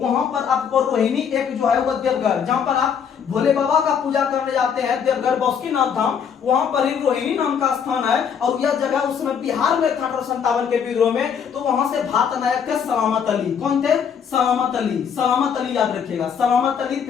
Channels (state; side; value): quieter; right; 7.3 dB